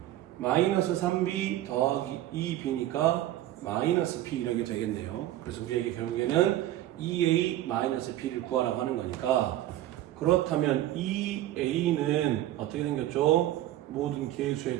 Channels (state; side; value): quieter; left; 14.0 dB